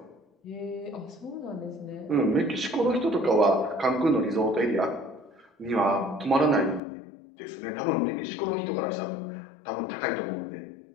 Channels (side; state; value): right; drops out; at 6.8 s